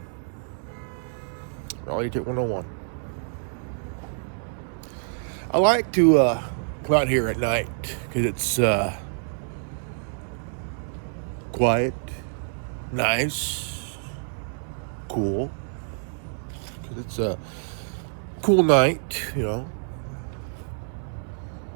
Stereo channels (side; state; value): left; silent; digital silence